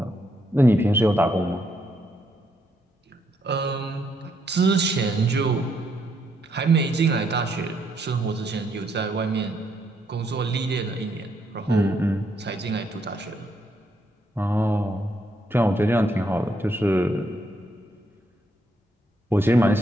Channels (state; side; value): normal; both; correlation 0.75